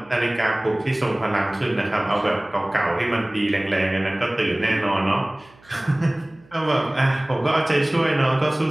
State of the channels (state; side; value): noise; right; hum, 28 dB below the sound